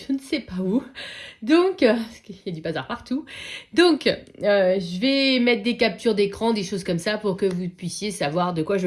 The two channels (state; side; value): identical; both; correlation 1.00